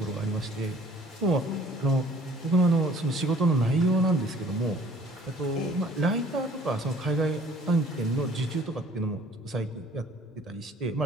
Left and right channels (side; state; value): both; normal; correlation 0.54